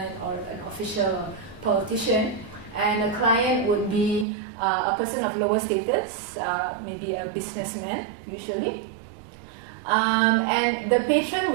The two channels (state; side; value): drops out; left; at 4.2 s